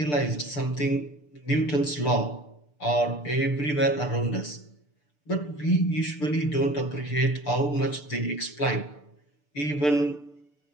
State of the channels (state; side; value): late; right; 6.8 ms